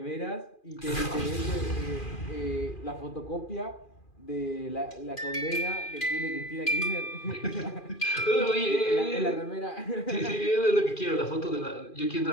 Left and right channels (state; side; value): late; right; 2.4 ms